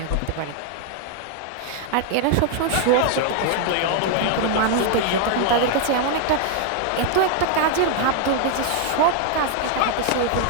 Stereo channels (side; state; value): both; different; correlation 0.00